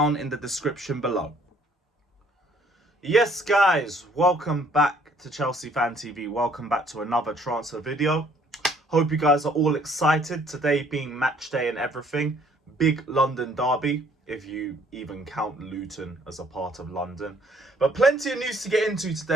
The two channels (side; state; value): both; normal; correlation 0.61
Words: in the description below. Yes, guys, welcome back to Chelsea Fan TV. Welcome back to another transfer video. Hope you guys are all excited. Today being match day and everything. Big London derby, if you even count Luton as a part of London. But plenty of news to get into